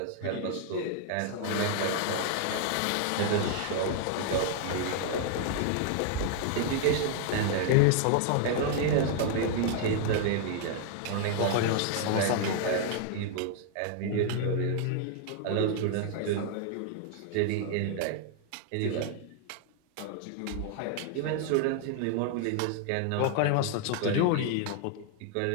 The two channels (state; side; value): different; both; correlation 0.00